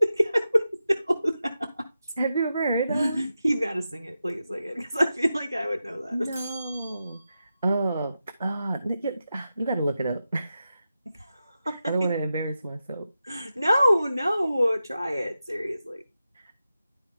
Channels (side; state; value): both; inverted; correlation -0.90